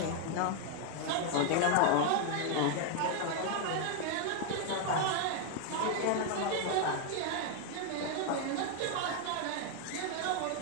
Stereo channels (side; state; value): both; different; correlation 0.00